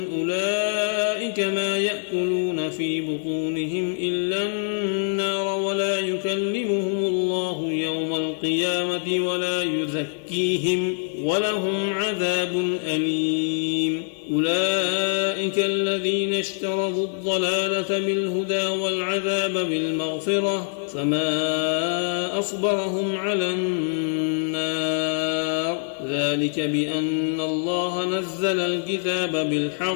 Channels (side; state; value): right; silent; digital silence